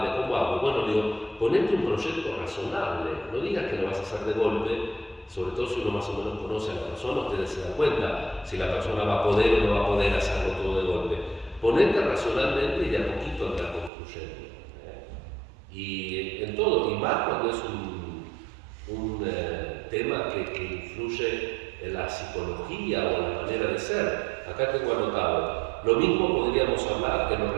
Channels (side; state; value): left; drops out; at 13.9 s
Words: ¿cómo hago? Bueno, digo, ponete un proyecto razonable, no digas que lo vas a hacer de golpe, sobre todo si uno más o menos conoce a la persona, ustedes se dan cuenta si la persona va a poder o no va a poder hacerlo todo de golpe. Ponete racionalmente y de a poquito andar construyendo. Y en todo, y más cuando es un tema que influye en la psicología o en la manera de ser. Acá tengo anotado, lo mismo podríamos hablar en lo